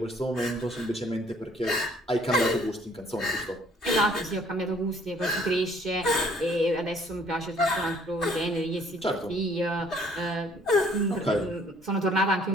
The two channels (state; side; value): normal; both; correlation 0.60